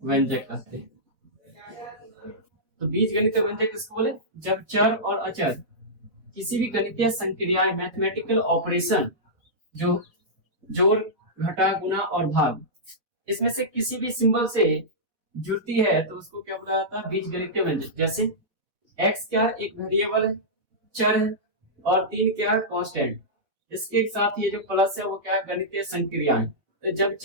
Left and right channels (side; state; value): left; late; 4.1 ms